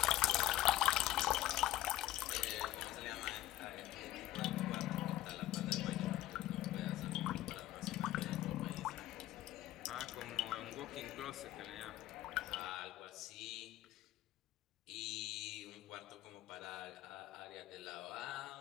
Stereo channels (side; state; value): right; quieter; 14.9 dB